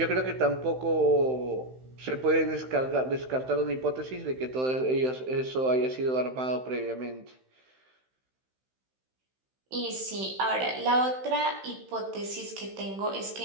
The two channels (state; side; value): late; left; 16 ms